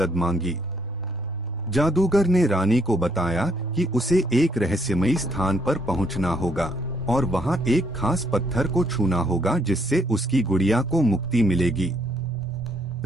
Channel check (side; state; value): both; normal; correlation 0.70